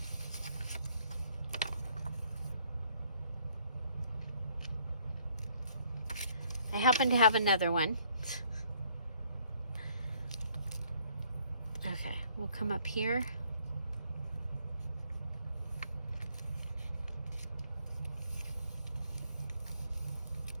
I happen to have another one. Okay, we'll come up here.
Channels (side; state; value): both; inverted; correlation -0.64